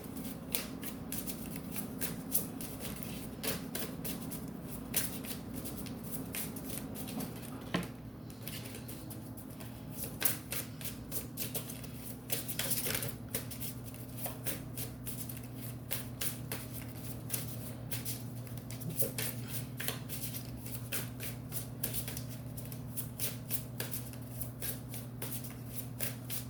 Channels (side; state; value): both; normal; correlation 0.95